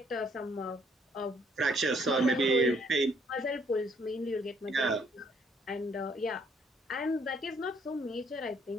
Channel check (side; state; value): both; normal; correlation 0.66